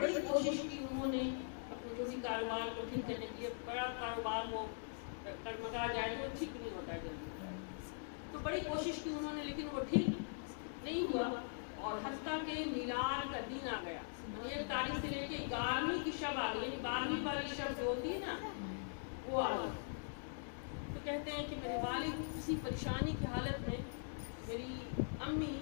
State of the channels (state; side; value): silent; right; digital silence